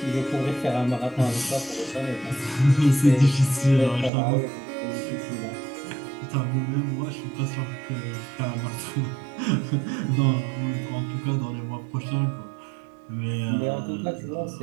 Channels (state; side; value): drops out; left; at 4.1 s